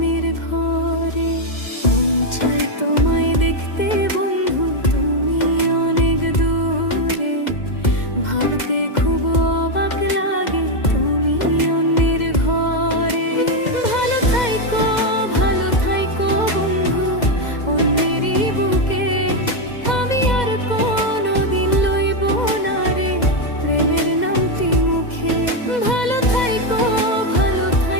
ঘরে। মন চায় তোমায় দেখতে বন্ধু, তুমি অনেক দূরে। ভাবতে খুব অবাক লাগে তুমি অন্যের ঘরে। ভালো থাইকো বন্ধু অন্যেরই বুকে। আমি আর কোনোদিন লইব না রে প্রেমের নামটি মুখে। ভালো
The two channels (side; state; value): right; late; 2.1 ms